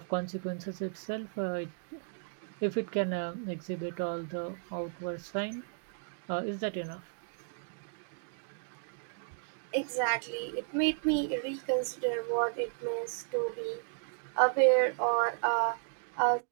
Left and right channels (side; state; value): left; silent; digital silence